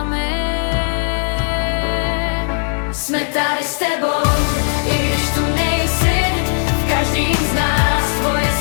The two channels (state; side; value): silent; right; 68 dB below the other